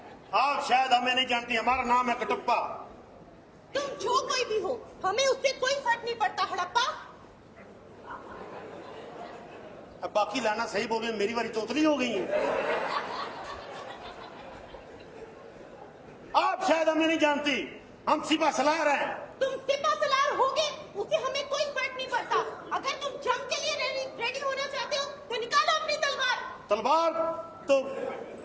आप शायद हमें नहीं जानती, हमारा नाम है कटप्पा। तुम जो कोई भी हो, हमें उससे कोई फर्क नहीं पड़ता। हड़प्पा। अब बाकी लाना सही बोल रहे, मेरी बारी तोतली हो गई है। आप शायद हमें नहीं जानती, हम सिपा सलार हैं। तुम सिपा सलार होगे, उससे हमें कोई फर्क नहीं पड़ता। अगर तुम जंग के लिए रेडी होना चाहते हो तो निकालो अपनी तलवार। तलवार तो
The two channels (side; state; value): both; identical; correlation 1.00